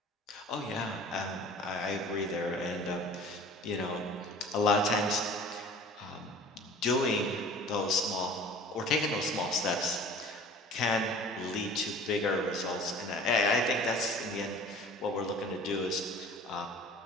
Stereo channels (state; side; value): normal; both; correlation 0.44